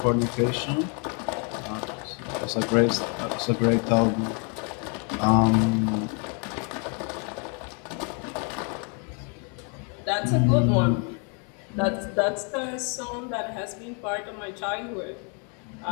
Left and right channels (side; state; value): right; quieter; 37.6 dB